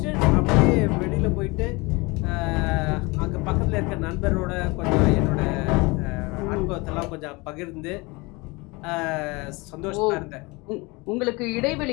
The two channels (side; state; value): right; quieter; 25.4 dB